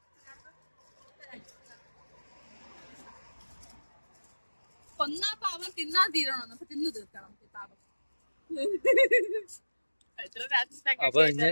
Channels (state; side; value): inverted; both; correlation -1.00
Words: കൊന്നാ പാവം തിന്നാ തീരണോ? അപ്പൊ തിന്നു തീർക്കണം പാവം. അപ്പൊ